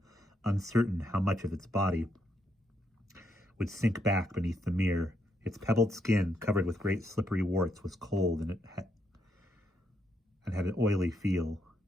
uncertain how much of its body would sink back beneath the mirror. Its pebbled skin, covered with great slippery warts, was cold and had an oily feel.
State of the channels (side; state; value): both; normal; correlation 0.78